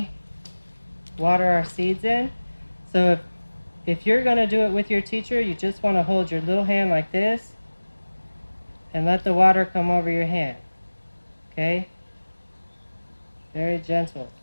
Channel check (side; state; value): both; inverted; correlation -1.00